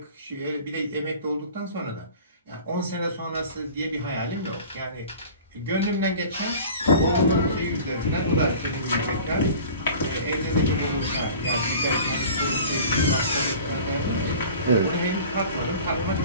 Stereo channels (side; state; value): both; inverted; correlation -0.42